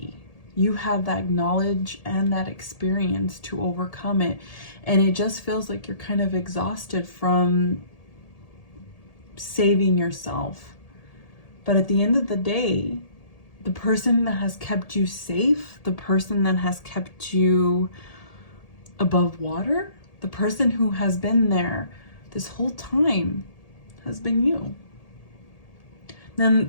You have that knowledge and that experience to overcome it. And it just feels like you're kind of exhausted from saving yourself. But at the end of the day, the person that has kept you safe, the person that has kept you above water, the person who has been there this whole time has been you. Then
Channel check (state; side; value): late; right; 1.8 ms